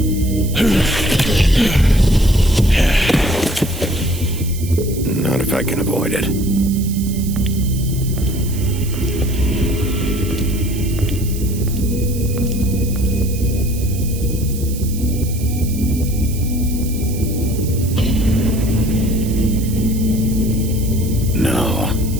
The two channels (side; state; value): right; noise; hiss, 13 dB below the sound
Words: Not if I can avoid it. No.